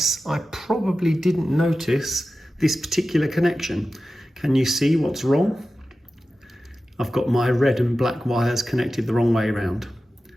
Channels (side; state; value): both; normal; correlation 0.94